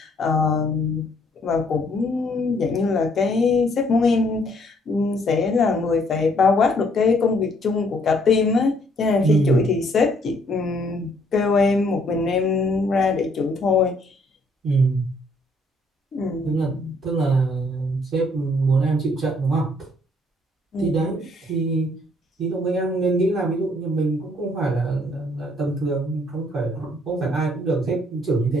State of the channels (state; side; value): normal; both; correlation 0.66